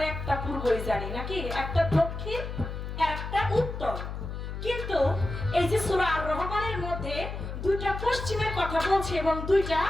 একটা পূর্বই জানি নাকি, একটা দক্ষিণ আর একটা উত্তর। কিন্তু এই যে সূরা আর রহমানের মধ্যে দুইটা পশ্চিমের কথা বলছে এবং দুইটা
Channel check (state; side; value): noise; left; hum, 6 dB below the sound